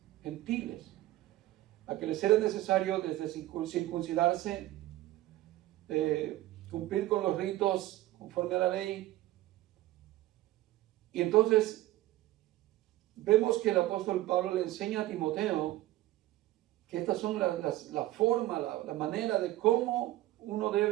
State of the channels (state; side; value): quieter; left; 16.1 dB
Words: gentiles, a que les era necesario desde circuncidarse, cumplir con los ritos conforme a la ley. Y entonces vemos que el apóstol Pablo le enseña a Timoteo que estas son la forma, la manera de cómo uno